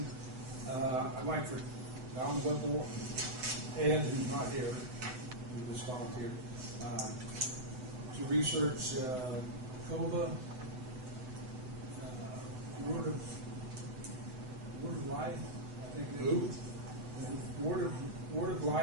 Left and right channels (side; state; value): left; late; 7.8 ms